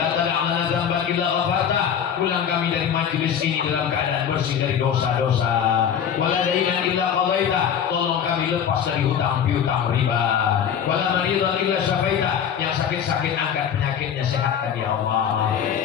tad'alna dzamban illa ghafarta. Pulang kami dari majelis ini dalam keadaan bersih dari dosa-dosa. Wala dainan illa qadaita. Tolong kami lepas dari hutang piutang riba. Wala maridan illa syafaita. Yang sakit-sakit angkat penyakitnya, sehatkan ya Allah.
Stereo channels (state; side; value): quieter; right; 8.4 dB